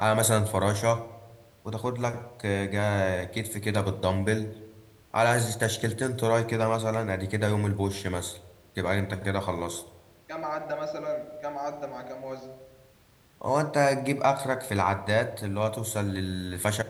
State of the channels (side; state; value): both; identical; correlation 1.00